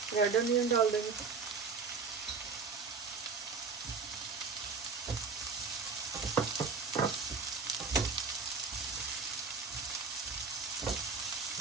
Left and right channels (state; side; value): quieter; left; 4.8 dB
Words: रेड अनियन डाल देंगे।